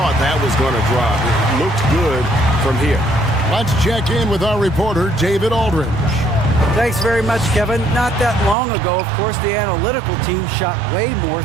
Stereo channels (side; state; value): left; drops out; at 8.6 s